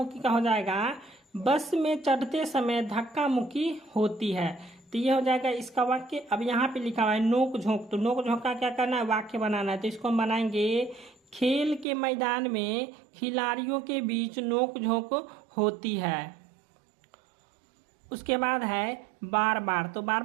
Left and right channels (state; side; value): drops out; left; at 11.9 s